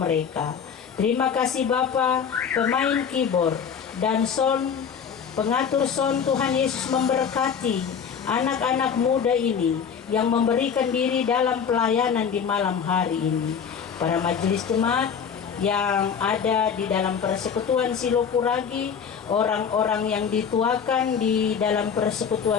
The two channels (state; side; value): quieter; right; 7.0 dB